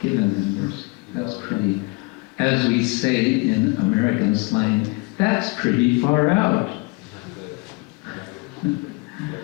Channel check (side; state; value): right; quieter; 27.5 dB